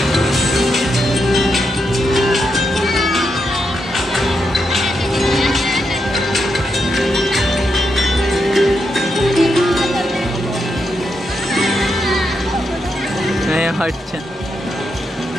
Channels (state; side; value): normal; both; correlation 0.83